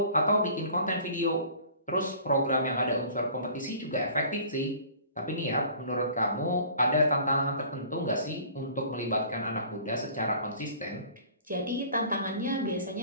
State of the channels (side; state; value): both; inverted; correlation -0.47